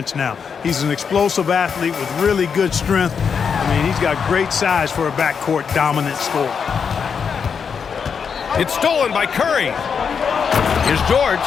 now. He's an explosive athlete with really good strength. I mean, he's got great size for a backcourt dominant scorer. It's stolen by Curry. Here's George.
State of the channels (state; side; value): quieter; right; 6.4 dB